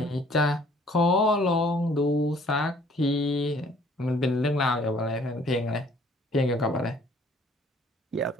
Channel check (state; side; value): normal; both; correlation 0.58